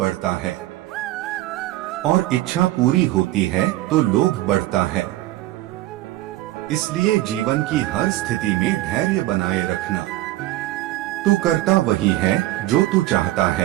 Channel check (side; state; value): left; quieter; 16.4 dB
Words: है, और इच्छा पूरी होती है तो लोभ बढ़ता है। इसलिए जीवन की हर स्थिति में धैर्य बनाए रखना। तू करता वही है जो तू चाहता